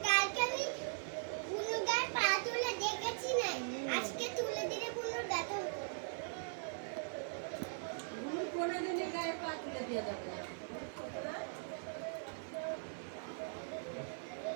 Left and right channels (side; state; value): left; silent; 51 dB below the other